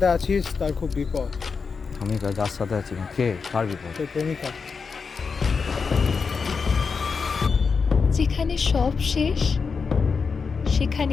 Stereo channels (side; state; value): right; quieter; 5.3 dB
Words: আছিস তার খুব বিপদ। আমি যার সাথে আছি কে, কার বিপদ? তোর প্রেমিকা। যেখানে সব শেষ